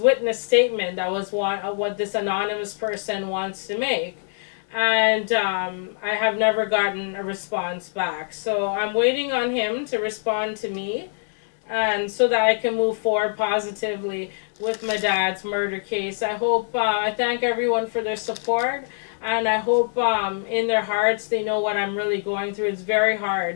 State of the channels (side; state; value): right; silent; digital silence